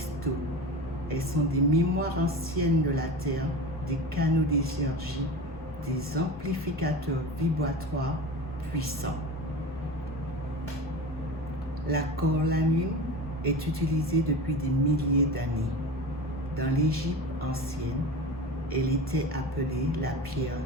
elles sont des mémoires anciennes de la Terre, des canaux d'énergie, des amplificateurs vibratoires puissants. La cornaline est utilisée depuis des milliers d'années. Dans l'Égypte ancienne, elle était appelée la pierre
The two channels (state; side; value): normal; both; correlation 0.31